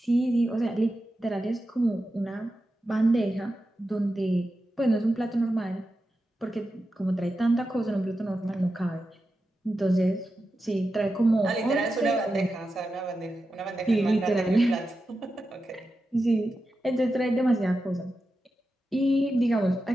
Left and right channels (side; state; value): both; normal; correlation 0.90